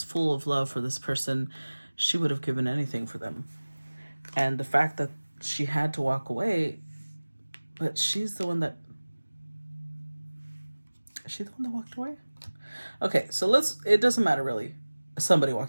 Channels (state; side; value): inverted; both; correlation -1.00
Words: full of love for this person. She would have given anything for them. And the fact that she had to walk away, but she's the one that Is she the one that walked away? Okay, so it doesn't matter really. Somebody